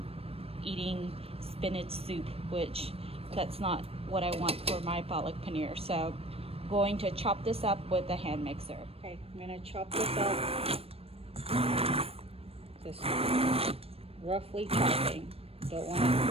eating spinach soup, which that's not what I want for my palak paneer. So I'm going to chop this up with a hand mixer. Okay, I'm gonna chop this up. Just roughly chopping. Don't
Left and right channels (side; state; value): left; late; 0.28 ms